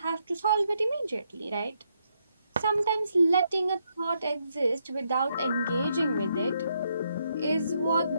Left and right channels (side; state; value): both; inverted; correlation -0.77